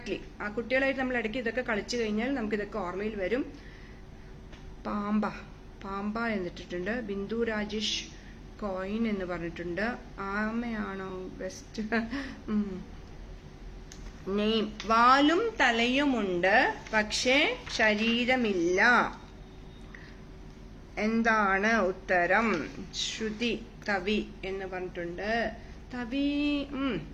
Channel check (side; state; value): both; identical; correlation 1.00